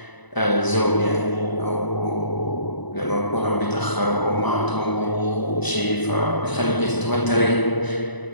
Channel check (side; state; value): right; late; 1.0 ms